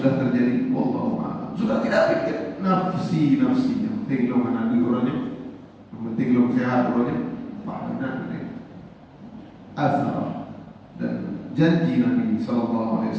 terjadi? Wallahu a'lam. Sudah tidak pikir nafsi-nafsinya, penting lo mana orangnya, penting lo sehat orangnya, benar ini. Azhar dan janji Nabi sallallahu alaihi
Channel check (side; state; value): both; identical; correlation 1.00